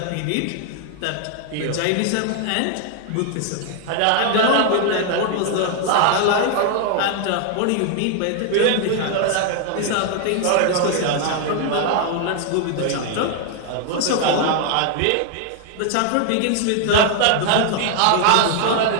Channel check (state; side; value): different; both; correlation 0.00